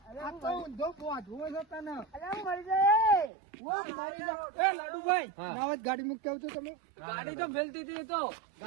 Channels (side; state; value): left; drops out; at 3.3 s